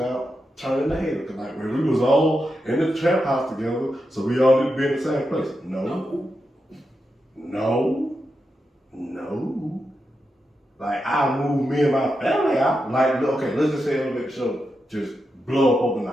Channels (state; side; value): normal; both; correlation 0.87